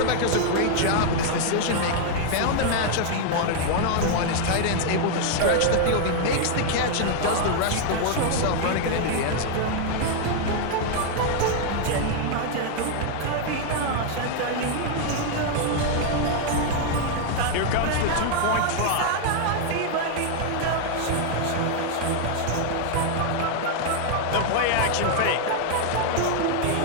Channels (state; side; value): different; both; correlation 0.00